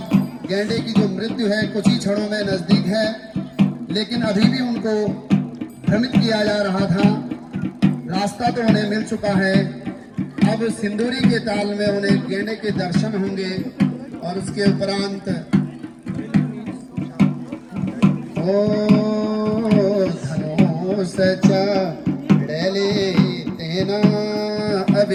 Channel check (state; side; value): identical; both; correlation 1.00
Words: गेंडे की जो मृत्यु है कुछ ही क्षणों में नजदीक है, लेकिन अभी भी उनको भ्रमित किया जा रहा था। रास्ता तो उन्हें मिल चुका है, अब सिंदूरी के ताल में उन्हें गेंडे के दर्शन होंगे और उसके उपरांत सचा डले तेना